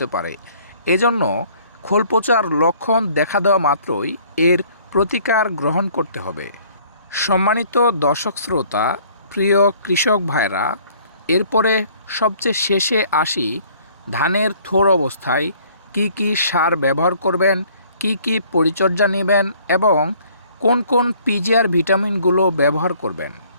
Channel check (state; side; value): inverted; both; correlation -0.57